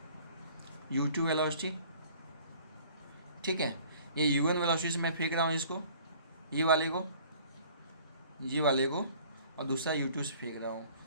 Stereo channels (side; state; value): both; inverted; correlation -0.52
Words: u2 वेलोसिटी। ठीक है, ये u1 वेलोसिटी से मैं फेंक रहा हूँ इसको, ये वाले को, और दूसरा u2 से फेंक रहा हूँ,